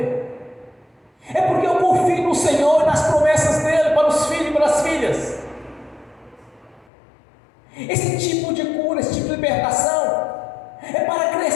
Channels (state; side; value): drops out; right; at 6.9 s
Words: É porque eu confio no Senhor e nas promessas dele para os filhos e para as filhas. Esse tipo de cura, esse tipo de libertação é para